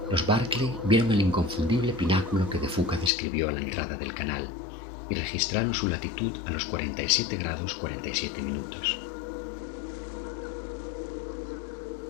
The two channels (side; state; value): right; drops out; at 3.1 s